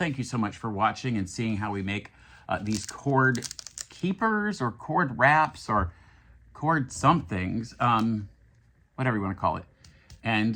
you so much for watching and seeing how we make these cord keepers or cord wraps or cord somethings, whatever you wanna call it.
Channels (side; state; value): both; identical; correlation 1.00